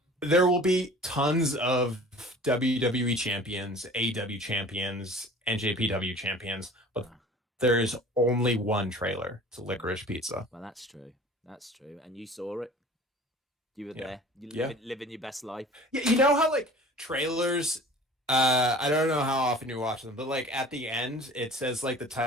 there will be tons of WWE champions, AEW champions, NJPW champions, but there is only one trailer to Licorice Pizza. Well, that's true. That's true. And you saw it. You were there. You living your best life. Yeah, you know how like trailers, I don't know how often you watch them, but like at the end it says like the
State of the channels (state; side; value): normal; both; correlation 0.44